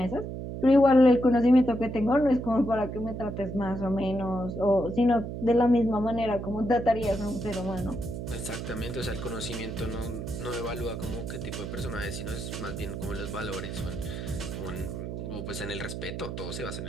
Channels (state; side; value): noise; right; hum, 6 dB below the sound